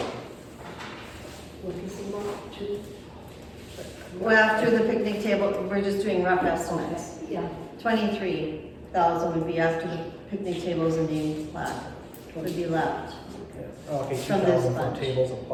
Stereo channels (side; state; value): both; identical; correlation 1.00